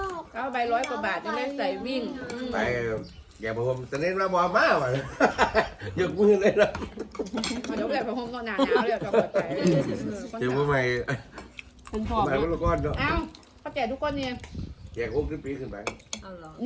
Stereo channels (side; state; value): both; identical; correlation 1.00